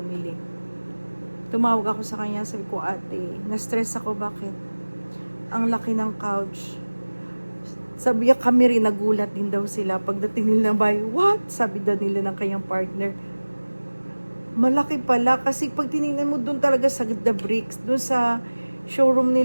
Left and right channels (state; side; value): inverted; both; correlation -1.00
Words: Tumawag ako sa kanya, sabi ko, ate, na-stress ako, bakit? Ang laki ng couch. Sabi niya, kami rin, nagulat din daw sila. Pagdating nila ng bahay, what? Sabi daw nila ng kanyang partner. Malaki pala, kasi pag tinignan mo doon talaga sa The Bricks, doon sa showroom